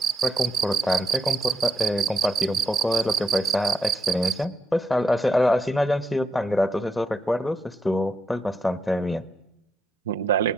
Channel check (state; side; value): normal; both; correlation 0.79